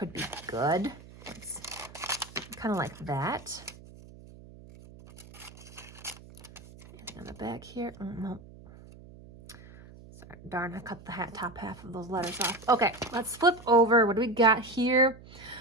be good. It's kind of like that. Anything on the back here? Oh, no. Sorry, darn, I cut the top half of those letters off. Okay, let's flip over. What do we got here?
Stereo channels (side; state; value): right; noise; hum, 19 dB below the sound